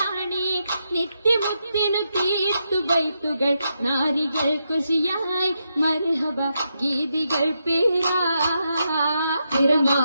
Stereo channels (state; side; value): inverted; both; correlation -0.83